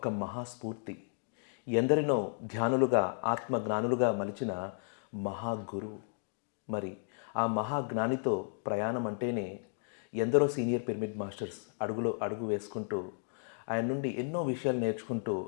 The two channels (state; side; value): silent; right; digital silence